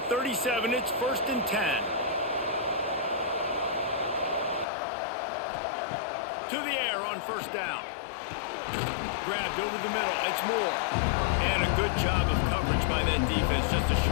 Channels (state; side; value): drops out; right; at 4.7 s